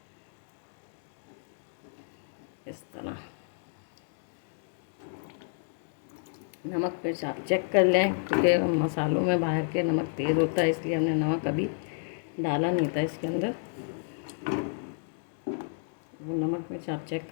इस तरह नमक मिर्च आप चेक कर लें, क्योंकि मसालों में बाहर के नमक तेज़ होता है, इसलिए हमने नमक अभी डाला नहीं था इसके अंदर। वो नमक मिर्च आप चेक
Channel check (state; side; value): silent; right; 58 dB below the other